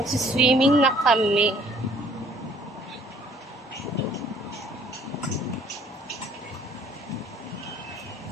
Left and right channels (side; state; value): both; normal; correlation 0.58